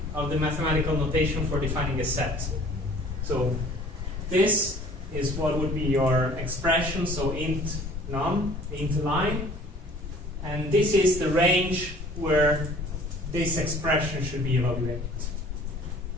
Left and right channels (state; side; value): normal; both; correlation 0.51